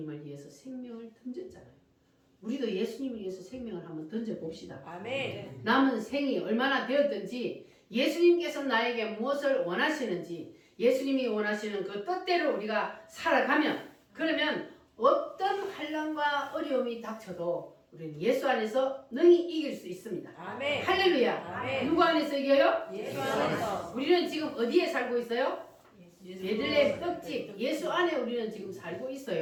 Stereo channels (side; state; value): both; identical; correlation 1.00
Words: 위해서 생명을 던졌잖아요. 우리도 예수님을 위해서 생명을 한번 던져봅시다. 아멘. 남은 생이 얼마나 되었든지 예수님께서 나에게 무엇을 원하시는지 예수님이 원하시는 그 뜻대로 우리가 살아가면 그러면 어떤 환난과 어려움이 닥쳐도 우리는 예수 안에서 능히 이길 수 있습니다. 아멘. 할렐루야. 아멘. 누구 안에서 이겨요? 예수 안에서. 우리는 지금 어디에 살고 있어요? 예수 베들레헴 떡집 예수 안에 우리는 지금 살고